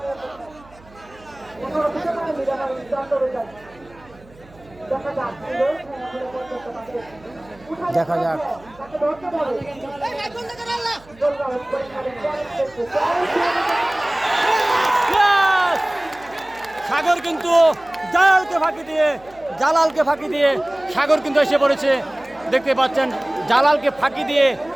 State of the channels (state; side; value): noise; right; hum, 25 dB below the sound